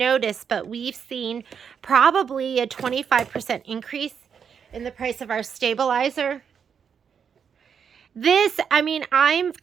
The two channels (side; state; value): left; quieter; 7.2 dB